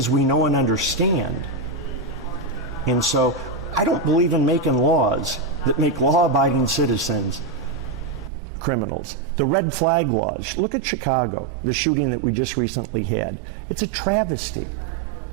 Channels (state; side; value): drops out; left; at 8.3 s